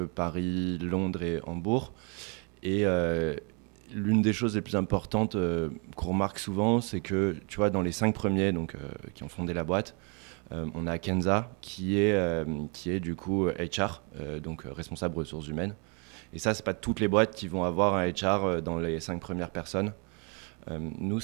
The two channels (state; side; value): quieter; left; 35.2 dB